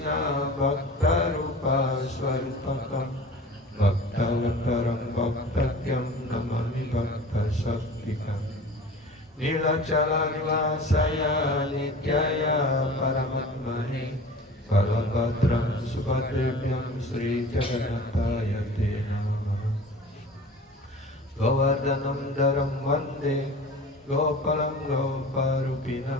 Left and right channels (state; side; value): normal; both; correlation 0.40